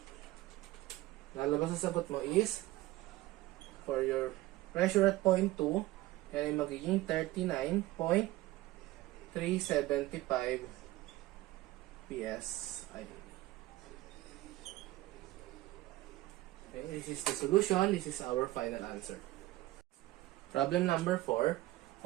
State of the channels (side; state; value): left; quieter; 17.5 dB